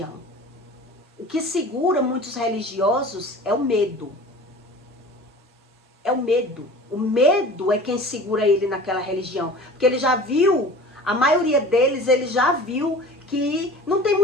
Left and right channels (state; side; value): normal; both; correlation 0.41